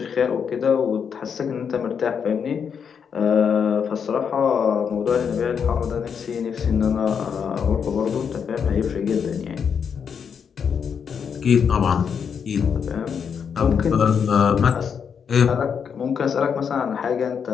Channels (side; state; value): right; quieter; 7.0 dB